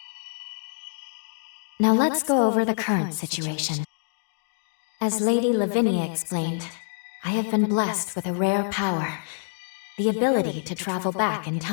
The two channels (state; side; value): silent; right; digital silence